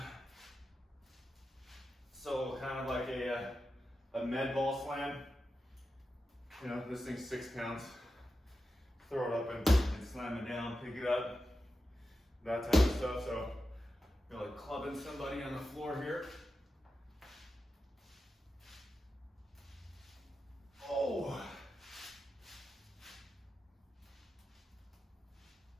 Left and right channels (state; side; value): normal; both; correlation 0.91